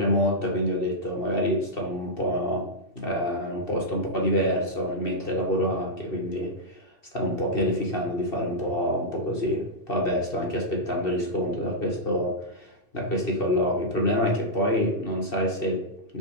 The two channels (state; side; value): late; right; 2.7 ms